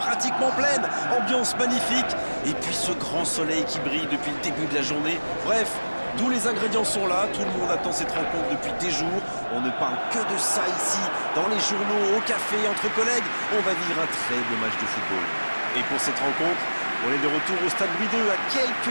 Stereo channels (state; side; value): inverted; both; correlation -1.00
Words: pleines. Ambiance magnifique et puis ce grand soleil qui brille depuis le début de la journée. Bref, tous les ingrédients sont là, tout le monde attend cette rencontre depuis des jours. On ne parle que de ça ici, dans les journaux, au café, entre collègues. On va vivre un très beau match de football. Et pour cette rencontre, on est de retour au stade Louis II, à